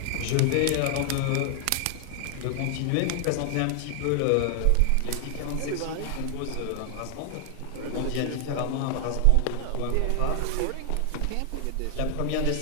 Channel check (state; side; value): different; both; correlation 0.00